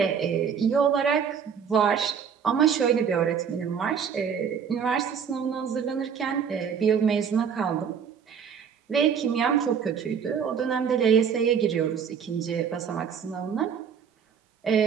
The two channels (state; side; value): quieter; left; 7.1 dB